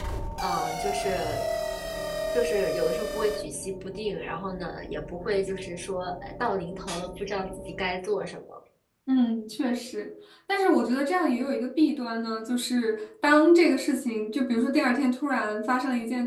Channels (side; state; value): both; identical; correlation 1.00